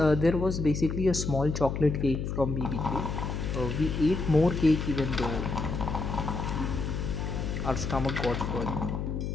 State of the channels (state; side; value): noise; left; hum, 3 dB below the sound